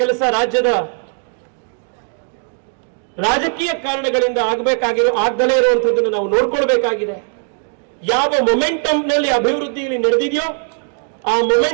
ಕೆಲಸ ರಾಜ್ಯದ ರಾಜಕೀಯ ಕಾರಣಗಳಿಂದ ಆಗದಲೇ ಇರುವಂತದ್ದನ್ನು ನಾವು ನೋಡ್ಕೊಳ್ಬೇಕಾಗಿದೆ. ಯಾವ ಮೊಮೆಂಟಮ್ ನಲ್ಲಿ ಅಭಿವೃದ್ಧಿ ಇಲ್ಲಿ ನಡೆದಿದೆಯೋ ಆ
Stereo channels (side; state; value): left; silent; 55 dB below the other